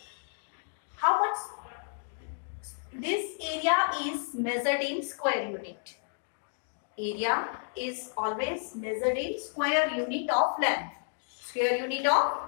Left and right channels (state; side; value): silent; right; digital silence